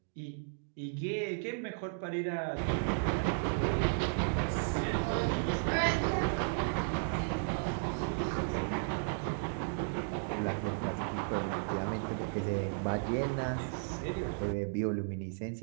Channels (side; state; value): left; silent; digital silence